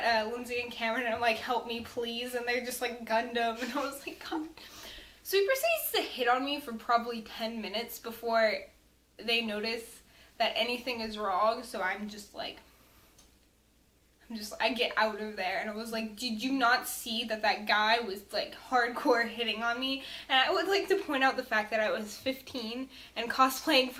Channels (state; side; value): identical; both; correlation 1.00